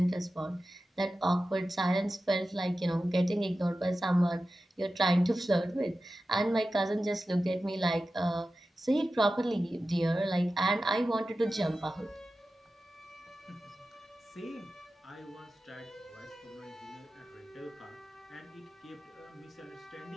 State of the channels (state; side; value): normal; both; correlation 0.94